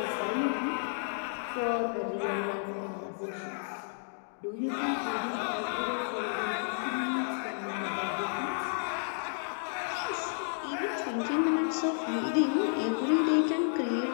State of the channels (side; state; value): right; silent; digital silence